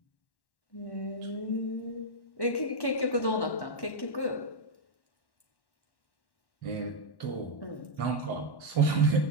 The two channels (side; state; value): right; late; 1.1 ms